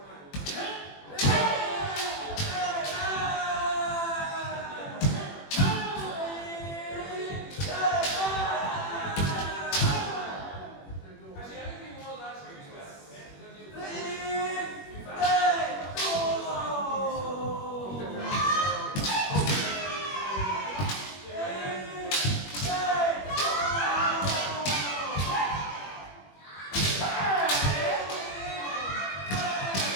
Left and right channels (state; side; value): late; right; 21 ms